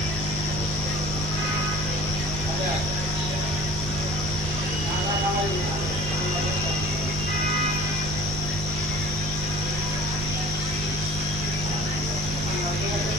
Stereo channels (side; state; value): both; normal; correlation 0.45